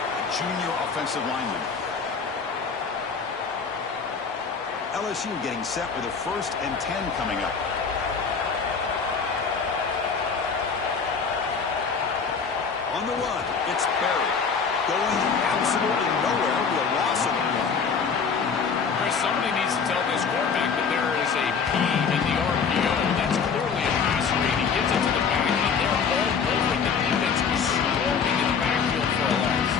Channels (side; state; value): right; quieter; 5.8 dB